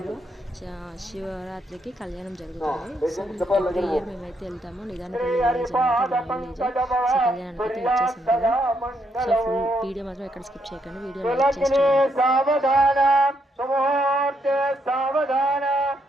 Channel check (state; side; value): normal; both; correlation 0.76